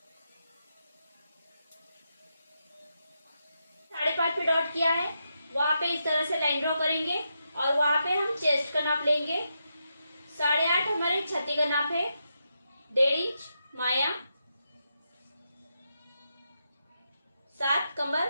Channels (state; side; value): inverted; both; correlation -0.85